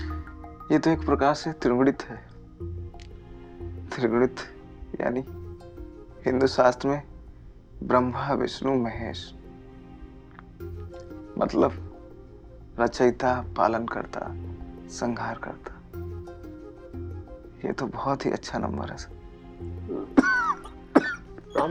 ये तो एक प्रकार से त्रिगुणित है। त्रिगुणित यानी हिंदू शास्त्र में ब्रह्मा विष्णु महेश, मतलब रचयिता, पालन करता, संहार करता। ये तो बहुत ही अच्छा नंबर है सर।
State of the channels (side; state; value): both; identical; correlation 1.00